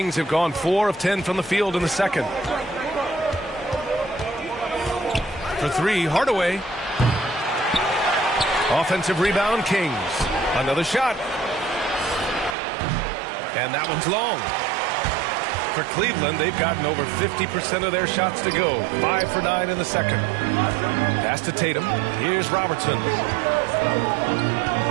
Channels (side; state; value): left; drops out; at 12.6 s